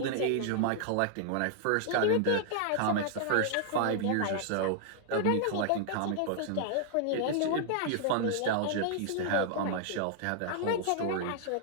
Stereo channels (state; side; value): different; both; correlation -0.01